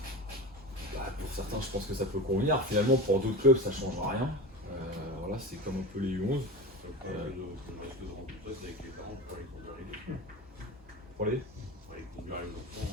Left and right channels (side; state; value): both; normal; correlation 0.28